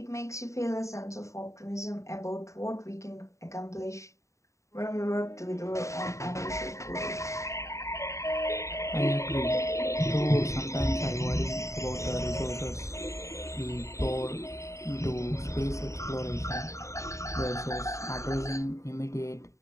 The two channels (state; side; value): late; right; 0.15 ms